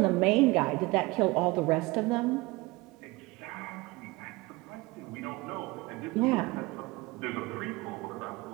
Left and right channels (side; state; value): left; quieter; 22.6 dB